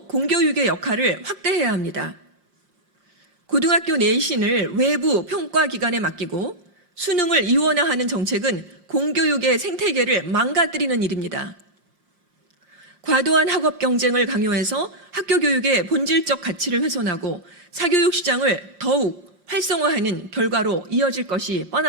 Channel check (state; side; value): late; left; 5.1 ms